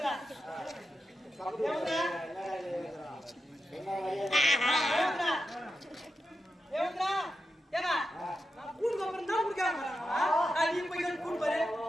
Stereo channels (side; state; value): both; normal; correlation 0.88